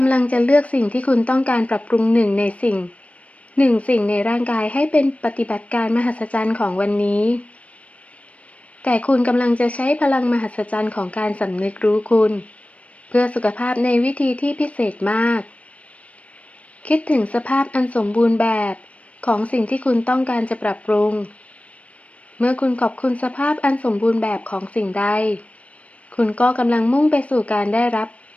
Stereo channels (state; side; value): late; right; 0.065 ms